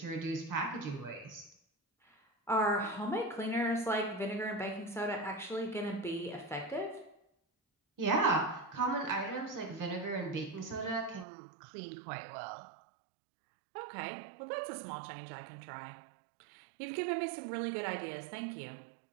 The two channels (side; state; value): left; drops out; at 11.2 s